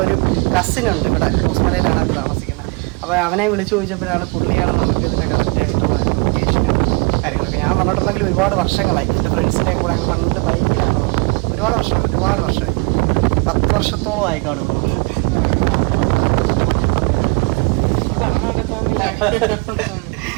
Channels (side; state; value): left; quieter; 30.3 dB